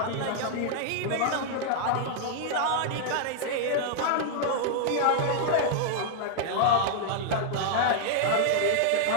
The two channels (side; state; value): both; different; correlation -0.01